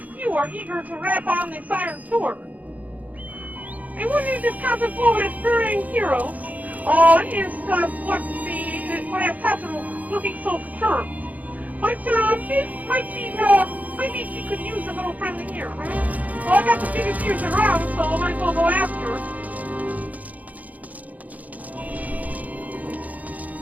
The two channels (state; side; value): late; left; 0.077 ms